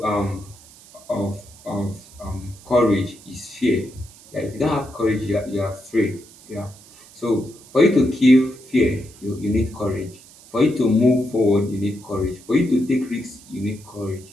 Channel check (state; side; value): noise; right; hiss, 22 dB below the sound